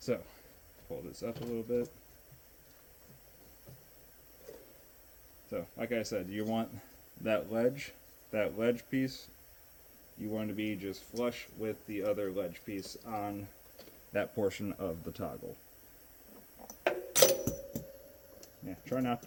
pull this up a little bit. So, like I said, you want that ledge piece, you want to be just flush with the other ledge piece on that portion of the toggle. Yeah, try not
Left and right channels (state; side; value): identical; both; correlation 1.00